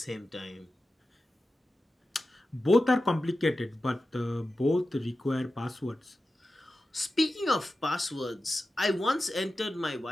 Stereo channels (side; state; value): both; normal; correlation 0.93